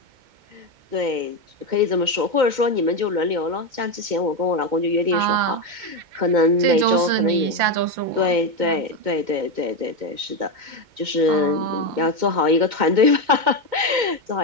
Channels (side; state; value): left; late; 2.2 ms